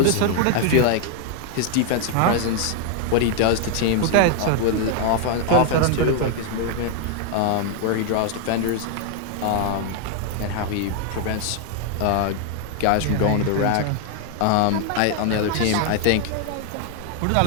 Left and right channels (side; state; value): both; different; correlation 0.00